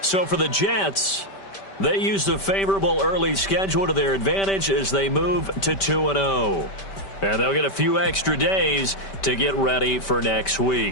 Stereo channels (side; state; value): right; late; 5.1 ms